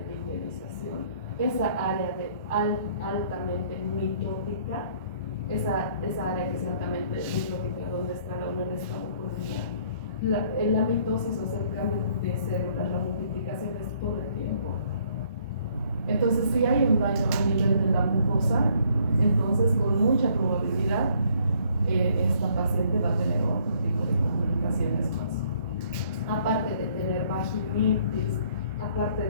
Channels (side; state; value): both; inverted; correlation -0.63